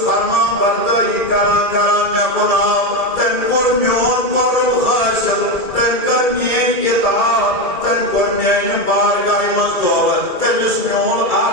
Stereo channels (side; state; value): right; late; 1.8 ms